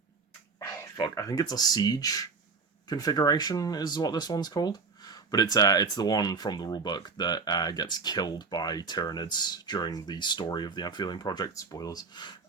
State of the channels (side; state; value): left; quieter; 4.7 dB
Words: fuck, I think it's a siege configuration is what this one's called. But it's the one from the rulebook that gets killed by Tyranids during the story of the Amphibian Project. Spoilers.